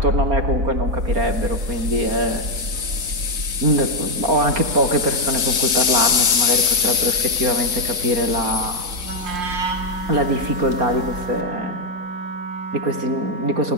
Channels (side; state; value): left; late; 4.0 ms